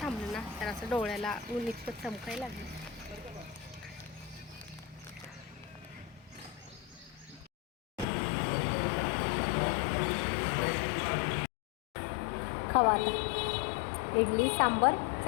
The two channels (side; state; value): right; drops out; at 8.1 s